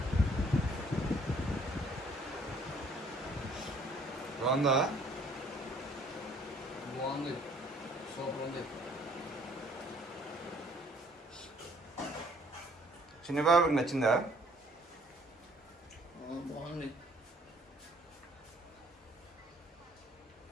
బాగుందా? బాగుంది, సూపర్ ఉంది. చిన్నబాబుకి నచ్చిందా? బాగుంది.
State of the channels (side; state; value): both; normal; correlation 0.60